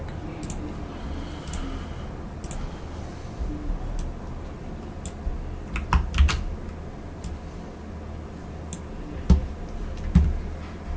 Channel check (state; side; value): identical; both; correlation 1.00